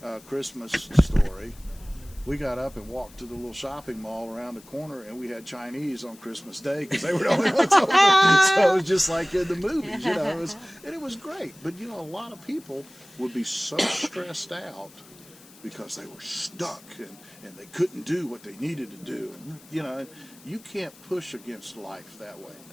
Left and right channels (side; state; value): left; noise; hiss, 23 dB below the sound